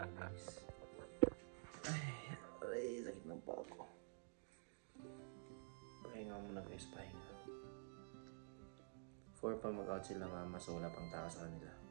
Ay, sakit ng paa ko. Pahinga muna guys, pahinga. 4 pa mag-out sila mama, so wala pang tao sa kanila.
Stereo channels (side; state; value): left; silent; digital silence